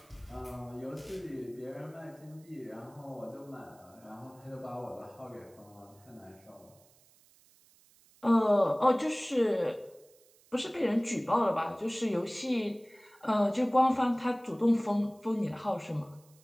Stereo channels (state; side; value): noise; right; hiss, 29 dB below the sound